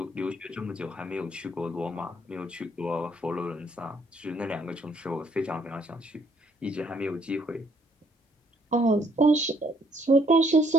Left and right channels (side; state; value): both; normal; correlation 0.66